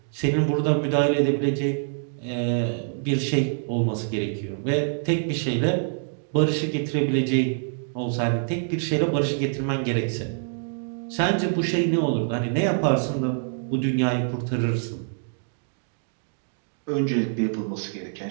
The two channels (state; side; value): silent; left; digital silence